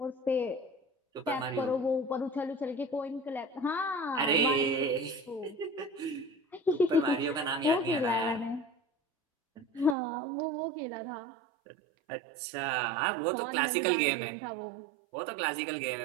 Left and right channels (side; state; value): left; drops out; at 10.0 s